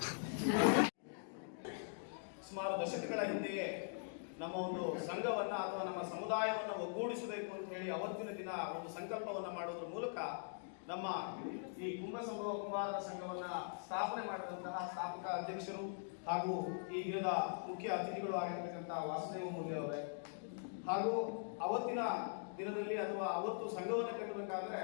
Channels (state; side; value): silent; right; digital silence